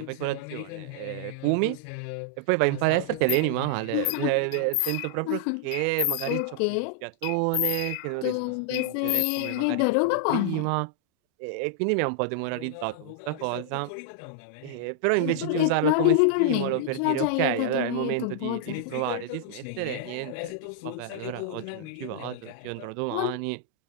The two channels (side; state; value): both; different; correlation -0.01